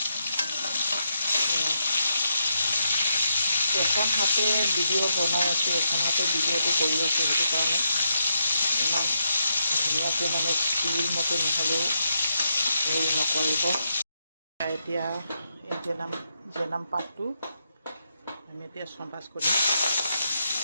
এখন হাতে ভিডিঅ' বনাই আছোঁ, এখন হাতে ভিডিঅ'টো কৰি আছোঁ। সেইটো কাৰণে ইমান ধুনীয়াকৈ টিভিৰ মতে নহ'লেও হেৰি নকৰিব। এতিয়া এই জেনাম পাতটো আমি এতিয়া চম্ভাজ কৰিম।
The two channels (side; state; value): both; inverted; correlation -0.82